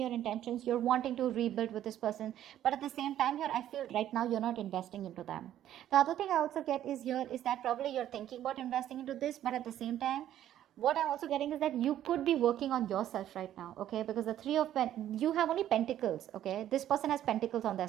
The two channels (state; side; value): quieter; left; 11.8 dB